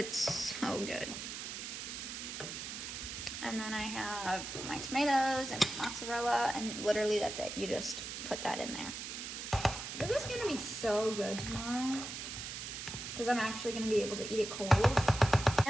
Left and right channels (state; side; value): noise; right; hiss, 7 dB below the sound